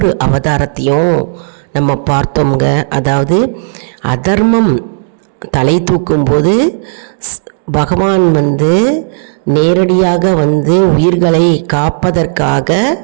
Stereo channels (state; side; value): silent; left; digital silence